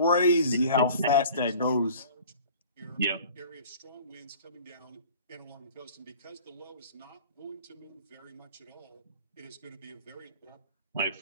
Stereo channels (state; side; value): inverted; both; correlation -0.45